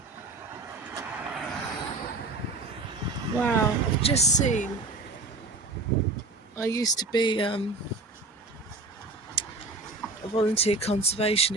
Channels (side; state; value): left; quieter; 3.3 dB